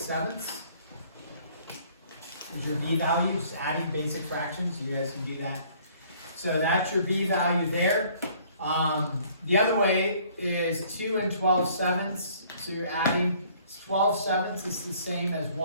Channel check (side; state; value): both; inverted; correlation -0.58